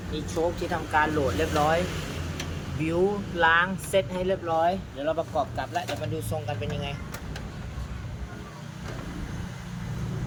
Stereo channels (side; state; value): both; identical; correlation 1.00